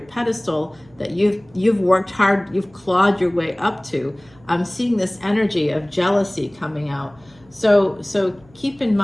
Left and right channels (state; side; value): noise; right; hum, 28 dB below the sound